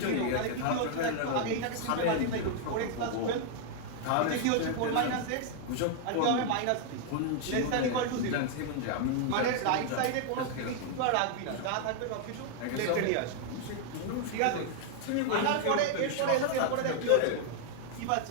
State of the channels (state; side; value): different; both; correlation 0.00